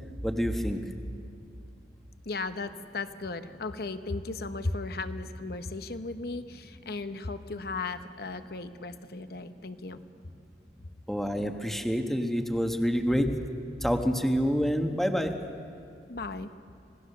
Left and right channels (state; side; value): normal; both; correlation 0.83